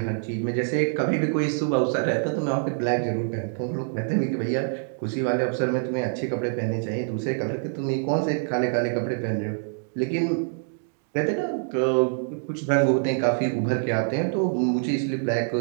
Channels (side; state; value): left; silent; digital silence